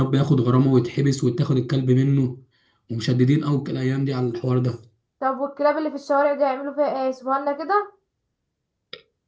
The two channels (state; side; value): identical; both; correlation 1.00